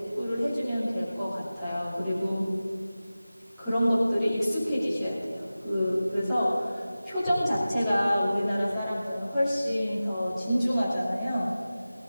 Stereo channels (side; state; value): both; inverted; correlation -0.96